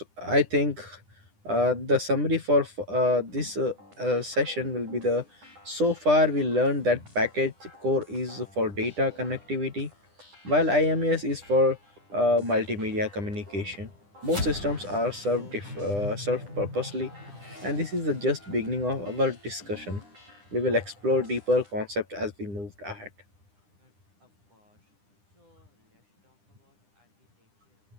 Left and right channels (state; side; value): late; left; 9.9 ms